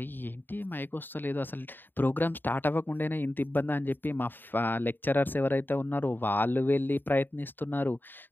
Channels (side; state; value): right; late; 0.093 ms